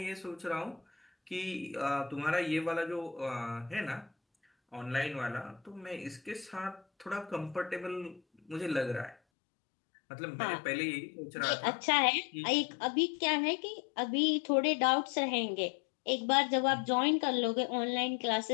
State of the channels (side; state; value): right; drops out; at 9.2 s